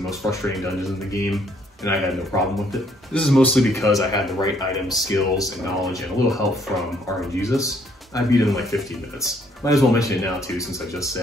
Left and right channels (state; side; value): normal; both; correlation 0.66